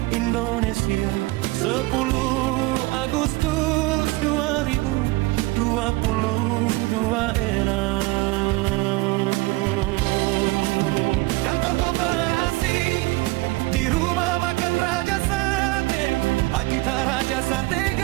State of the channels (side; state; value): left; quieter; 21.6 dB